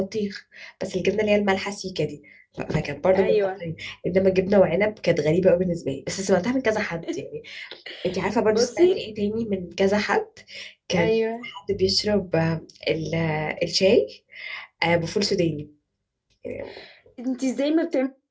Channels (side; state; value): both; identical; correlation 1.00